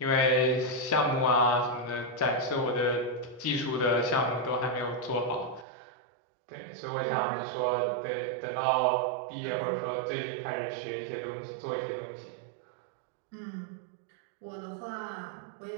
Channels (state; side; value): drops out; left; at 5.7 s